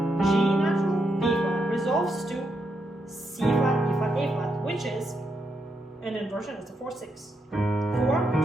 G natural, B flat resolves to C flat, E flat, A flat, which is an inversion. It's a 4/6. 4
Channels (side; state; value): both; normal; correlation 0.82